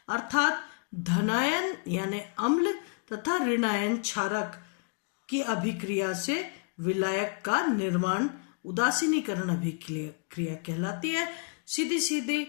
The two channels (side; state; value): right; quieter; 37.1 dB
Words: अर्थात धनायन यानी अम्ल तथा ऋणायन क्षारक की अभिक्रिया से विलायक का निर्माण उदासीनीकरण अभिक्रिया कहलाती है। सीधी सीधी